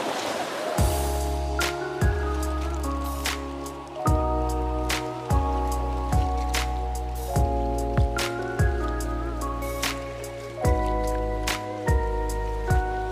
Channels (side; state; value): both; identical; correlation 1.00